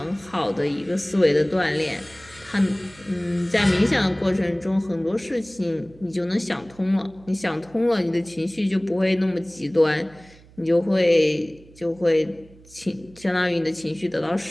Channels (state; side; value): noise; right; hum, 24 dB below the sound